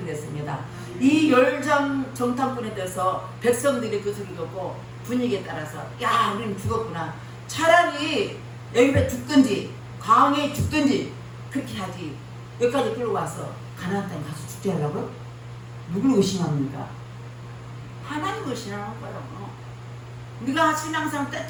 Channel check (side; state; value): both; identical; correlation 1.00